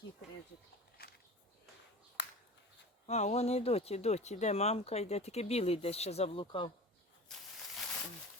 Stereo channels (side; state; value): both; normal; correlation 0.35